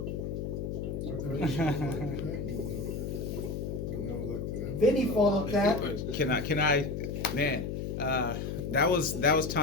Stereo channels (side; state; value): left; noise; hum, 4 dB below the sound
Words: Vinny followed that. Can I, man, that was